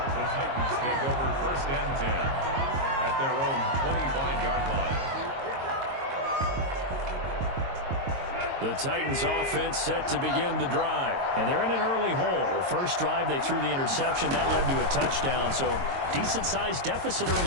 Titans take over 1st and 10 at their own 25-yard line. The Titans offense set to begin the drive. And they're in an early hole. First drive, they threw the interception. That led to a touchdown. So decent-sized deficit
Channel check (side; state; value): left; late; 22 ms